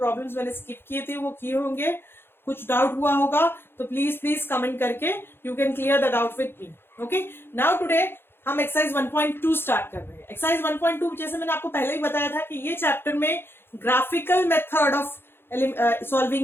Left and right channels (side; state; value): right; late; 0.11 ms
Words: मैंने स्किप किए थे वो किए होंगे. कुछ डाउट हुआ होगा तो प्लीज कमेंट करके you can clear the doubt with me. Okay, now today हम एक्सरसाइज 1.2 स्टार्ट कर रहे हैं. एक्सरसाइज 1.2 जैसे मैंने आपको पहले ही बताया था कि ये चैप्टर में graphical method of